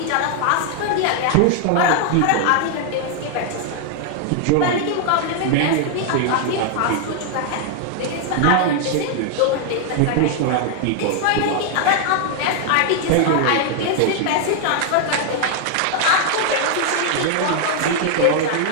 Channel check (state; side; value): different; both; correlation 0.00